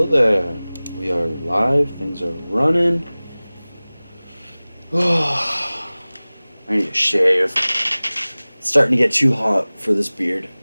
there. We are live. Things are running. I need to shave. It's starting to get too hot for this beard.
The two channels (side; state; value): both; inverted; correlation -0.99